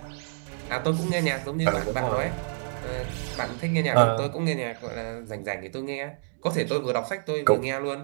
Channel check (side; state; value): left; silent; digital silence